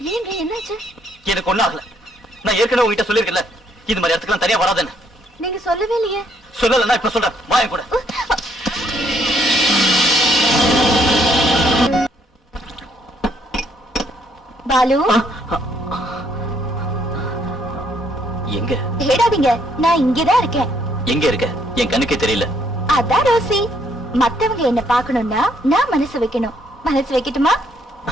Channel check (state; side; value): normal; both; correlation 0.69